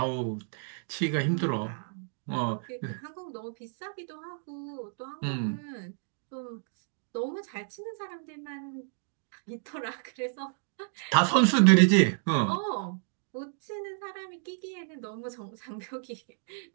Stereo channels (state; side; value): silent; left; digital silence